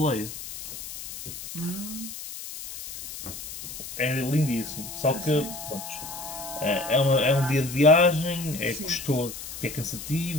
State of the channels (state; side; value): noise; left; hiss, 10 dB below the sound